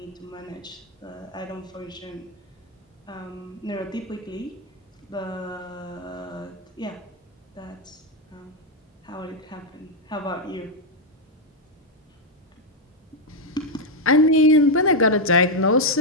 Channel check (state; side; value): normal; both; correlation 0.02